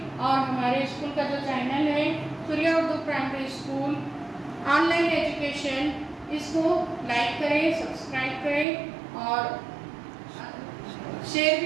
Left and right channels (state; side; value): drops out; left; at 8.7 s